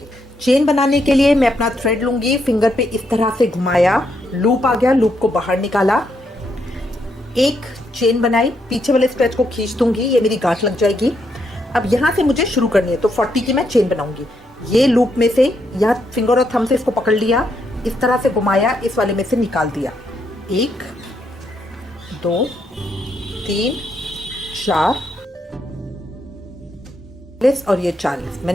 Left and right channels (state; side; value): normal; both; correlation 0.78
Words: चेन बनाने के लिए मैं अपना थ्रेड लूंगी, फिंगर पे इस तरह से घुमाया, लूप आ गया, लूप को बाहर निकाला, एक चेन बनाई, पीछे वाले स्ट्रेच को खींच दूंगी, ये मेरी गांठ लग जाएगी। अब यहाँ से मुझे शुरू करनी है, तो 40 की मैं चेन बनाऊंगी। ये लूप में से यहाँ फिंगर और थंब से इसको पकड़ लिया, इस तरह से घुमाया, इस वाले में से निकाल दिया। 1 2 3 4 और ये 40।